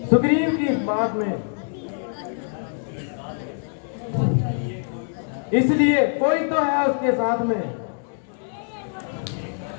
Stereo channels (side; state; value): right; silent; digital silence